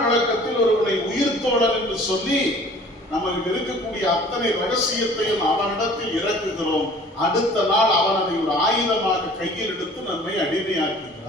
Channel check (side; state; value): both; normal; correlation 0.49